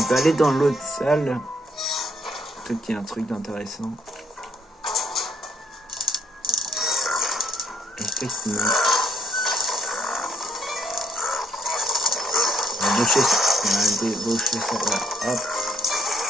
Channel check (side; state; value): both; normal; correlation 0.68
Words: va aller dans l'autre salle. Peut-être qu'il y a un truc d'intéressant. Effectivement. On va débaucher ça. On va débaucher ça. Voilà. Hop.